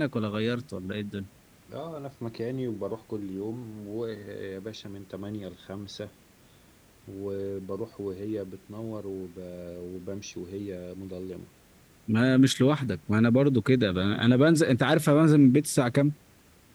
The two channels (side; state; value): both; identical; correlation 1.00